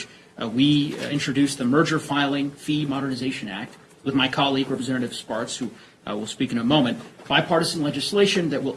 we introduced the Merger Filing Fee Modernization Act with my colleague, Representative Sparks, who will speak in a moment. Bipartisan legislation that will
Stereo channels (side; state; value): both; identical; correlation 1.00